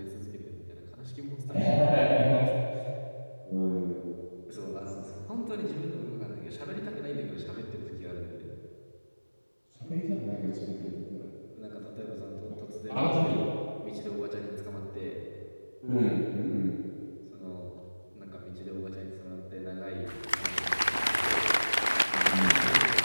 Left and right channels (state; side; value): inverted; both; correlation -1.00